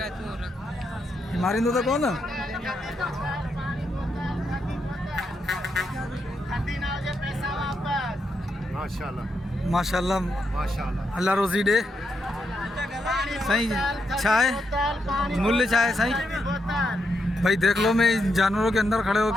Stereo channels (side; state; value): both; normal; correlation 0.82